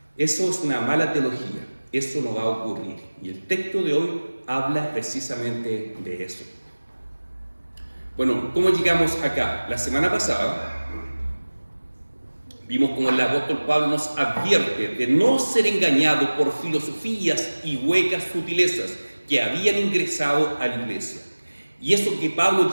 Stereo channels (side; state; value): both; inverted; correlation -1.00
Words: eso es una mala teología, eso no va a ocurrir. Y el texto de hoy habla precisamente de eso. Bueno, ¿cómo llegamos acá? La semana pasada vimos como el apóstol Pablo nos advierte de no ser engañado por filosofías y huecas sutilezas que habían ingresado a la iglesia. Y eso que Pablo